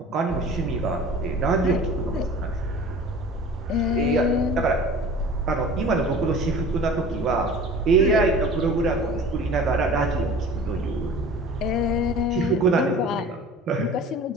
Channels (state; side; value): normal; both; correlation 0.42